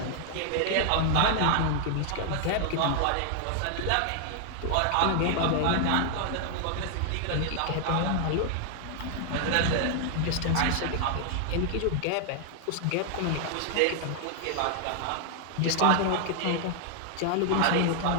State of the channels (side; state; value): both; different; correlation 0.00